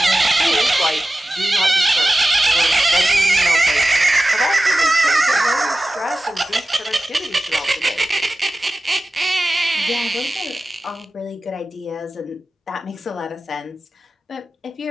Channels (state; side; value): normal; both; correlation 0.95